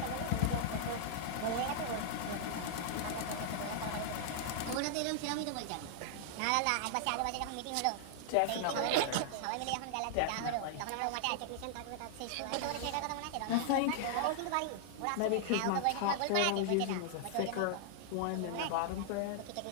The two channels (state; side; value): different; both; correlation -0.01